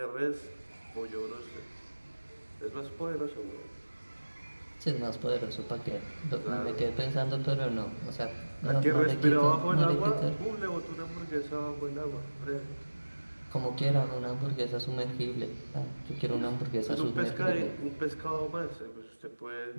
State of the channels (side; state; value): both; inverted; correlation -1.00